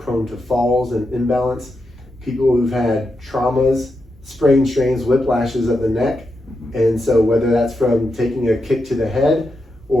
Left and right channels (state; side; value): normal; both; correlation 0.86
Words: to falls and imbalance, people who've had traumas, sprains, strains, whiplashes of the neck. And so whether that's from taking a kick to the head